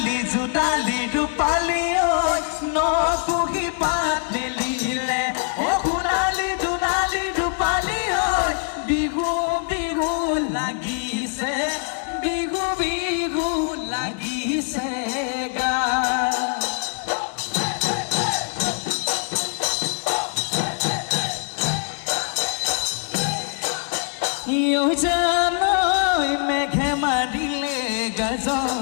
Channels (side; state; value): right; silent; 56 dB below the other